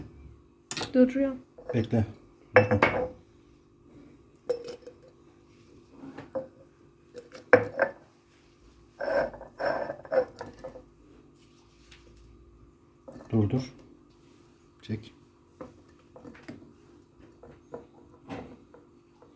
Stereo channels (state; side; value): identical; both; correlation 1.00